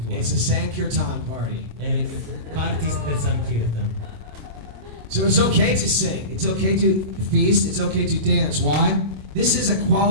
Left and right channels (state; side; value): late; left; 26 ms